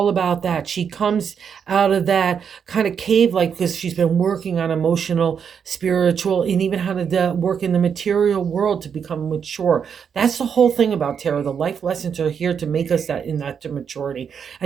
about that. She comes out of that kind of cave, like, because she's been working on emotional, spiritual, and even how to work in the material world to become mature. That's the whole thing about tarot. The life lessons are here to make us that in that to maturity.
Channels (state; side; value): quieter; left; 7.2 dB